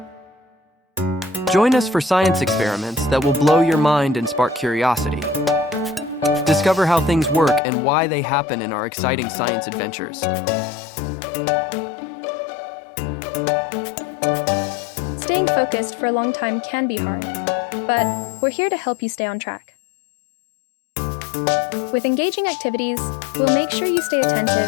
Join us for science experiments that will blow your mind and spark curiosity. Discover how things work and why they happen in our exciting science adventures. Staying focused for a long time can be hard, but we're here to help you stay on track. With engaging activities, we'll make sure you stay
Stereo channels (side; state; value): right; drops out; at 7.6 s